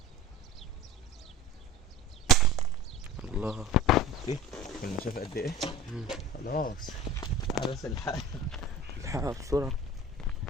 الله. ايه المسافة قد ايه؟ خلاص. بس الحقها بسرعة.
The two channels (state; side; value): normal; both; correlation 0.38